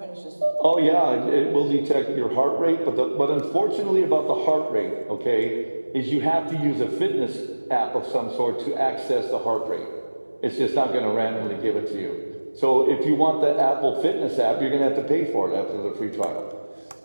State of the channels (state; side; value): inverted; both; correlation -1.00